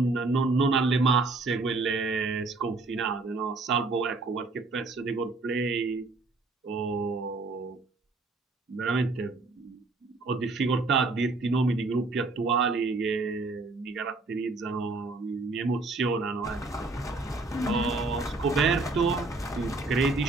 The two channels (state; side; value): quieter; left; 3.5 dB